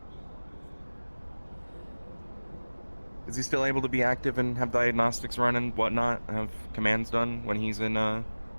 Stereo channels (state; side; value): inverted; both; correlation -1.00